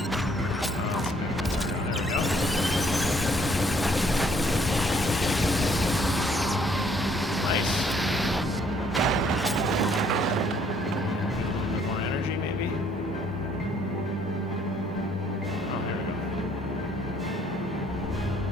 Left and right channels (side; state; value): both; normal; correlation 0.64